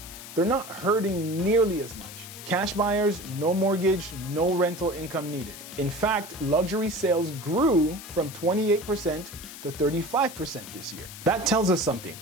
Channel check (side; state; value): left; noise; hiss, 13 dB below the sound